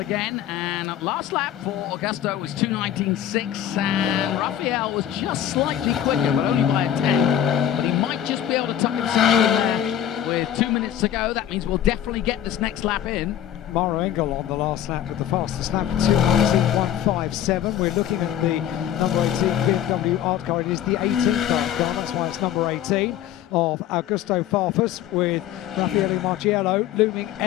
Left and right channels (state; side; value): quieter; right; 10.8 dB